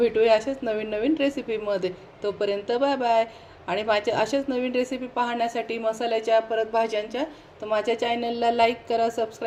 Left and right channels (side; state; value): both; identical; correlation 1.00